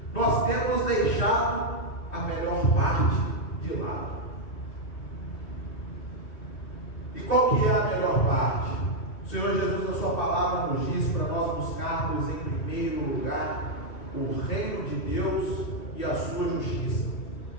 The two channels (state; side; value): late; right; 3.2 ms